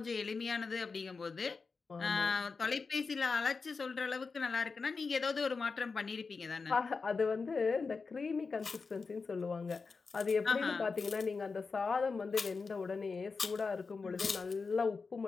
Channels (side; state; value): right; quieter; 4.6 dB